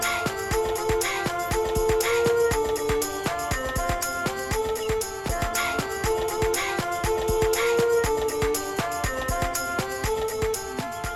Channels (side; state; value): both; identical; correlation 1.00